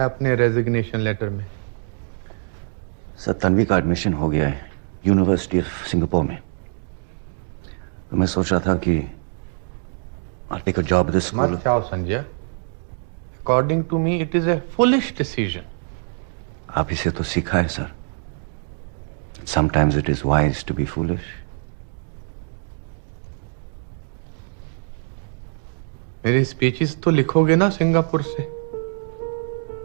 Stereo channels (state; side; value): silent; left; digital silence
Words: अपने रेजिग्नेशन लेटर में? सर, तन्वी का एडमिशन हो गया है यूनिवर्सिटी ऑफ सिंगापुर में। तो मैं सोच रहा था कि I'll take a job at this school. मत जाओ Sanjay. According to me it is a foolish decision. आप इसे तो सीखा है sir. Sometimes it is wise to be foolish. मेरी स्पीचेस तो लिखोगे ना सिंगापुर से?